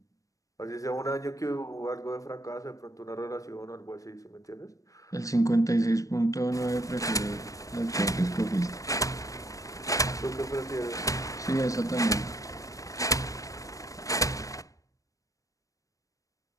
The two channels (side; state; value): right; late; 0.16 ms